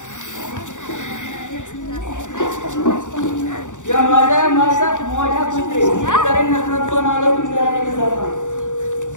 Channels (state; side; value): late; right; 0.86 ms